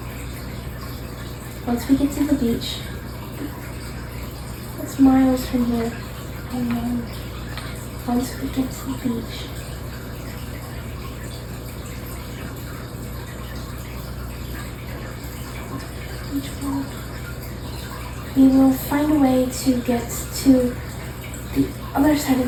Once we get to the beach, it's miles from here. I know. Once we get to the beach, we will find a way to get to the other side of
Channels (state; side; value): identical; both; correlation 1.00